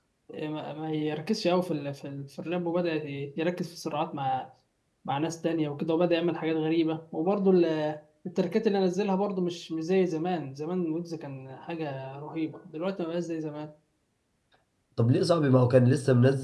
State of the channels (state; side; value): identical; both; correlation 1.00